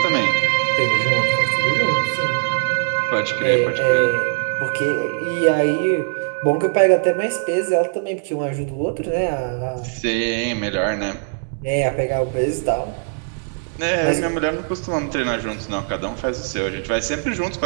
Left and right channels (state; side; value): silent; left; digital silence